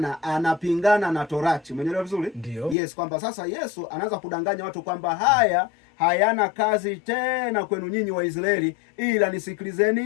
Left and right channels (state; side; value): drops out; right; at 2.8 s